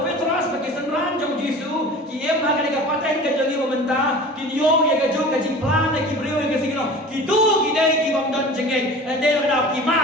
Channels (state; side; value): normal; both; correlation 0.39